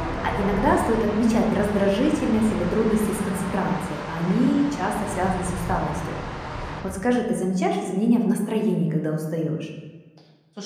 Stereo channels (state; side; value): identical; both; correlation 1.00